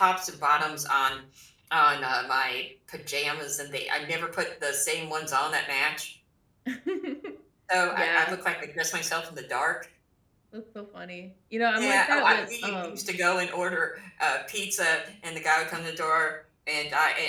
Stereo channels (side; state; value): both; identical; correlation 1.00